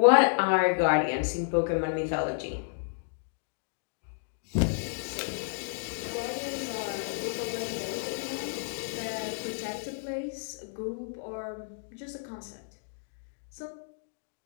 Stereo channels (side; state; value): right; silent; digital silence